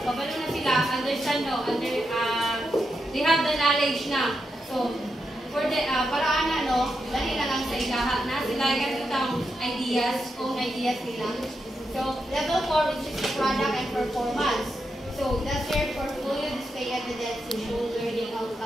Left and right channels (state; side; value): normal; both; correlation 0.85